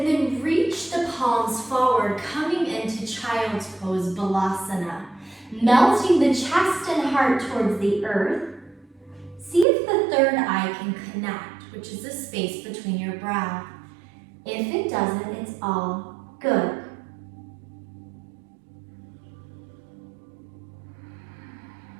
then reach the palms forward, coming into child's pose, balasana. Melting the chest and heart towards the earth. See if the third eye can connect, which is the space between your brow. If it doesn't, it's all good.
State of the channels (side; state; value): left; drops out; at 9.7 s